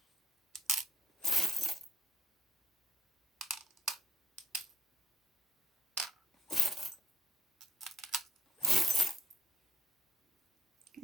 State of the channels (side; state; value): both; normal; correlation 0.67